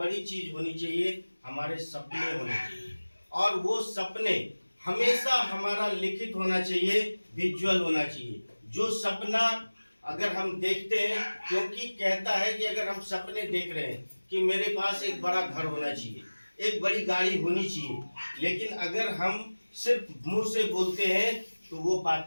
चीज होनी चाहिए, हमारे सपने होने चाहिए। और वो सपने हमेशा हमारा लिखित होना चाहिए, विजुअल होना चाहिए। जो सपना अगर हम देखते हैं, क्योंकि कहता है कि अगर हम सपने देख रहे हैं कि मेरे पास एक बड़ा घर होना चाहिए, एक बड़ी गाड़ी होनी चाहिए, लेकिन अगर हम सिर्फ मुंह से बोलते हैं तो वो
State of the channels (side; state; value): both; inverted; correlation -1.00